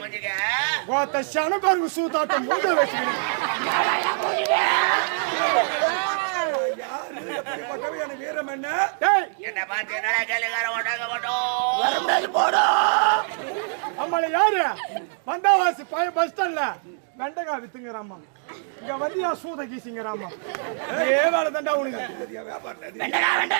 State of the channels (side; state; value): left; silent; digital silence